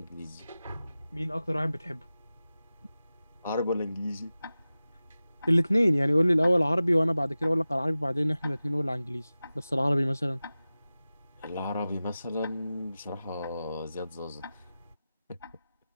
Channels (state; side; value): inverted; both; correlation -0.96